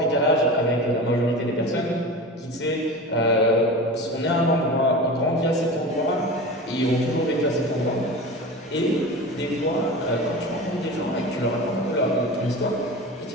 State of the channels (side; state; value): both; normal; correlation 0.31